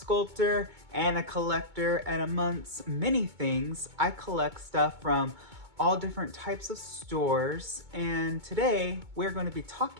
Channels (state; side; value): late; left; 2.2 ms